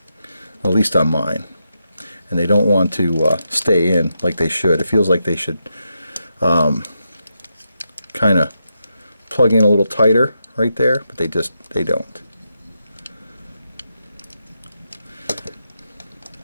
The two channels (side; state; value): both; inverted; correlation -0.85